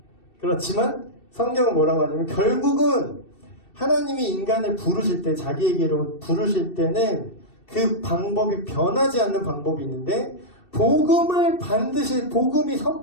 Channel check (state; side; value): late; right; 2.7 ms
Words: 그렇지만 성경은 뭐라고 하냐면 결국은 하나님이 인간을 부르실 때 자기에게로 부르실 때는 그 방법이 변하지 않는 방법이 있는데 복음을 반드시 복음이